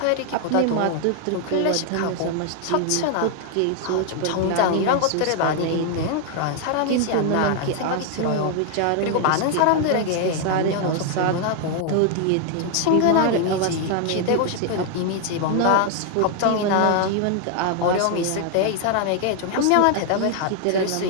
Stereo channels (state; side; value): different; both; correlation 0.00